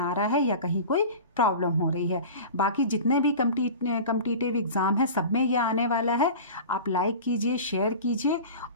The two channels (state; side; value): inverted; both; correlation -0.34